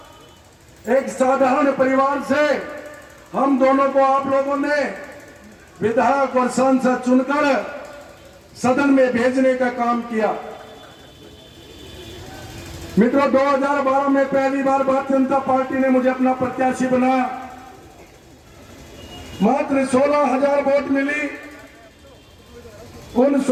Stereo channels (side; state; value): both; identical; correlation 1.00